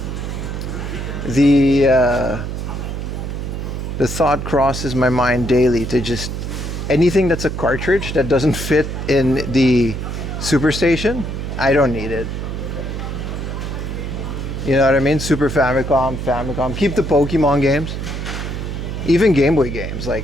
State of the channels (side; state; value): right; noise; hum, 5 dB below the sound